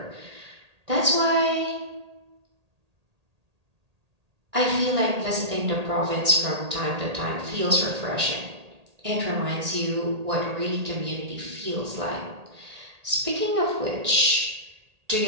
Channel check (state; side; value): late; left; 1.8 ms